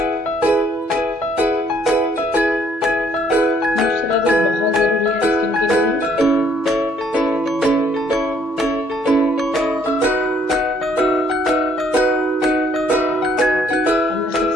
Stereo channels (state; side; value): normal; both; correlation 0.65